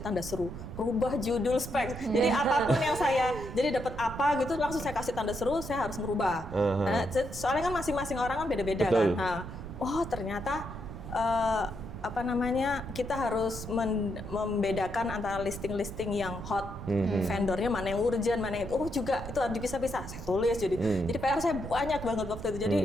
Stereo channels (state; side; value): noise; right; rumble, 10 dB below the sound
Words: tanda seru, rubah judul spek. Jadi apapun yang saya, jadi dapat apa gitu, langsung saya kasih tanda seru, saya harus merubah. Nah, soalnya kan masing-masing orang kan beda-beda kan. Nah, oh ternyata kita harus membedakan antara listing-listing yang hot, vendornya mana yang urgent, mana yang juga itu harus dipisah-pisah. Saya tulis jadi PR saya banyak banget waktu itu. Jadi